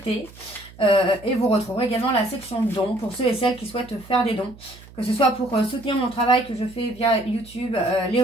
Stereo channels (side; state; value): right; noise; hum, 21 dB below the sound